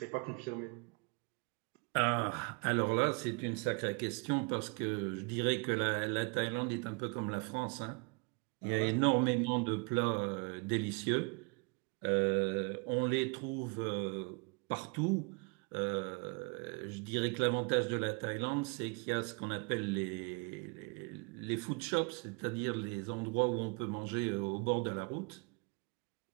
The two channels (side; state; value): left; quieter; 32.6 dB